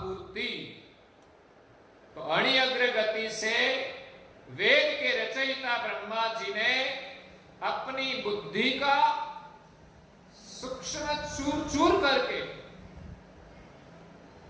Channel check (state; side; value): identical; both; correlation 1.00